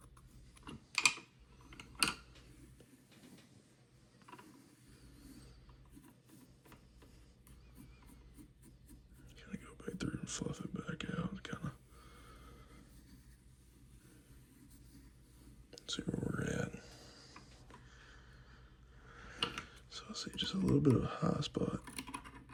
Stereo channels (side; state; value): both; identical; correlation 1.00